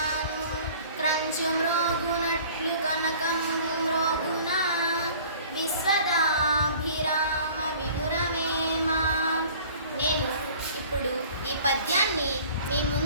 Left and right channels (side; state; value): both; inverted; correlation -0.49